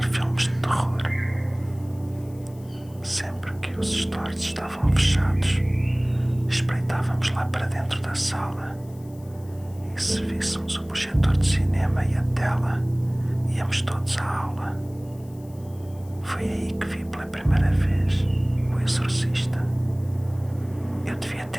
filmes de terror. Sempre que os stores estavam fechados, espreitávamos lá para dentro da sala e, se víssemos o projetor de cinema e a tela, íamos todos à aula. Foi aí que vi pela primeira vez O Exorcista. Eu devia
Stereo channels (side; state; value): left; noise; hiss, 26 dB below the sound